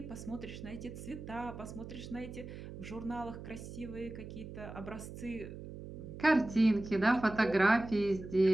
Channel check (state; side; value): noise; right; hum, 11 dB below the sound